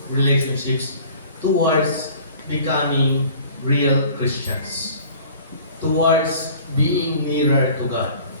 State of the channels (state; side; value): inverted; both; correlation -0.48